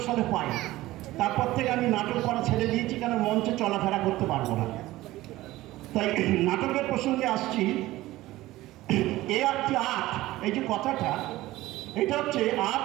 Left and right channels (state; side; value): quieter; left; 17.1 dB